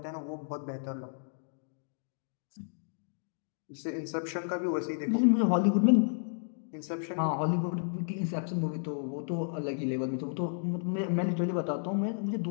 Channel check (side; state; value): right; silent; digital silence